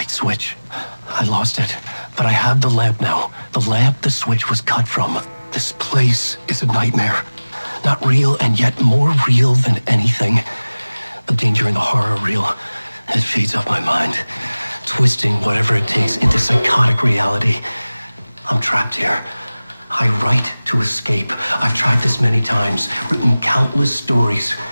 switch. I lost it. But I have the lamp now. The lamp the switch was cut from. This place is a nightmare. Not real, and yet more real than anything. The danger and the horror real. It feeds off my mind. Twisting whatever it takes into psychotic reality. I'm trapped here. I write to escape. I've tried this many times, written countless stories,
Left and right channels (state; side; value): inverted; both; correlation -0.99